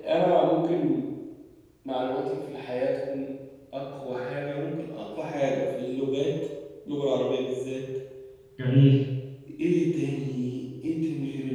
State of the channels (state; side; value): identical; both; correlation 1.00